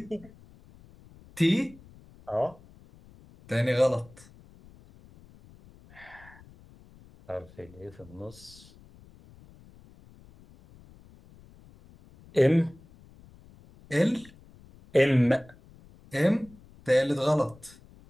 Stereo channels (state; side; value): noise; left; rumble, 24 dB below the sound